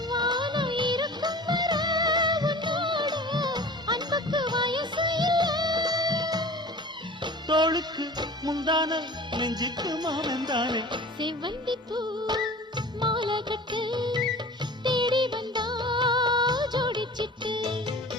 வானம் இருக்கும் வர உன்னோடு அன்புக்கு வயசு இல்லை தோளுக்கு முந்தான நெஞ்சுக்கு மாவந்தானே செவ்வந்தி பூ மாலை கட்டு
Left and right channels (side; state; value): both; normal; correlation 0.40